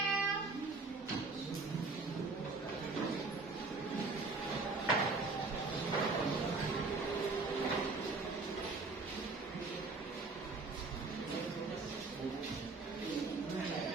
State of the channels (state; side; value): quieter; left; 3.8 dB